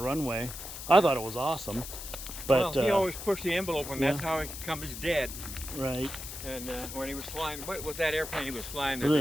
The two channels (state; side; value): noise; left; hiss, 9 dB below the sound